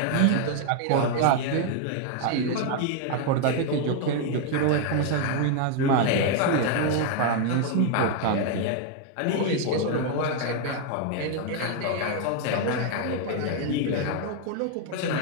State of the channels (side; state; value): both; different; correlation 0.00